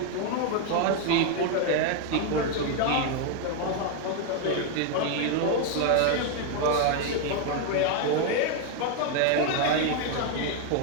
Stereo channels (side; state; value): both; different; correlation 0.01